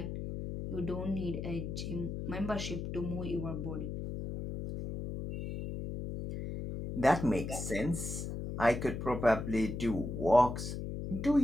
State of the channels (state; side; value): noise; left; hum, 5 dB below the sound